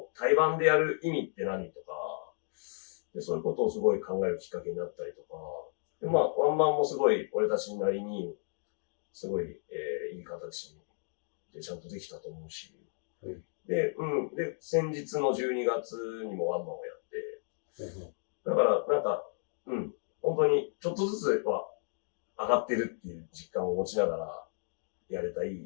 対バンでやる意味って何とか、で、そういうことをすごい考えるきっかけになったりとか、で、まあ、ワンマンもすごい俺たちなりに、すごい、いい形でちゃんとできたと思うし、はい、で、先日の12月にもワンマンをやって、だからなんか、本当にちょっとずつは上がってるっていう実感を持ちながらやれたい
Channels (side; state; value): right; silent; digital silence